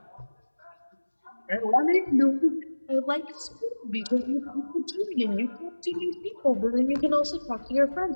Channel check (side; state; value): both; inverted; correlation -1.00